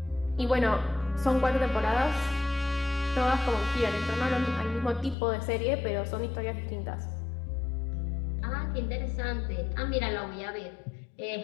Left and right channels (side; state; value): right; drops out; at 5.2 s